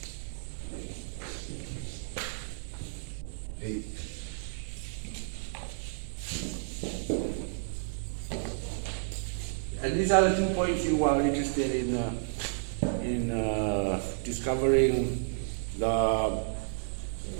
A. And these are the 2 points you are interested in discovering the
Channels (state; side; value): silent; left; digital silence